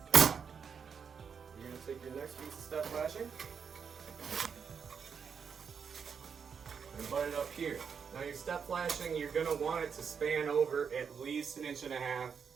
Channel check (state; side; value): quieter; left; 6.5 dB